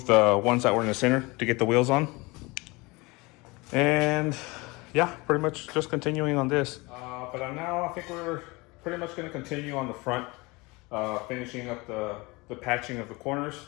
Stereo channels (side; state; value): right; quieter; 24.6 dB